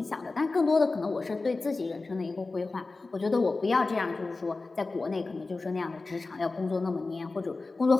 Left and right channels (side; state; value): right; quieter; 3.6 dB